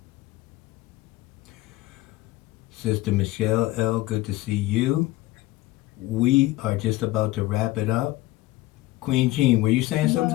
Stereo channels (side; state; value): right; quieter; 18.0 dB